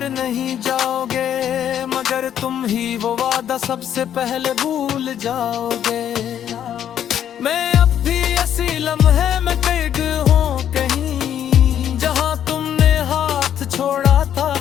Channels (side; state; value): right; quieter; 9.9 dB